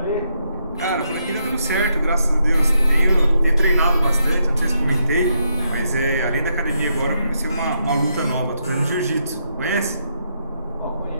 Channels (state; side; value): inverted; both; correlation -0.79